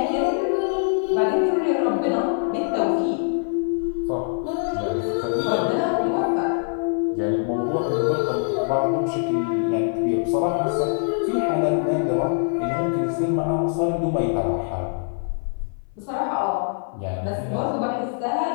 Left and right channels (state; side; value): silent; right; 62 dB below the other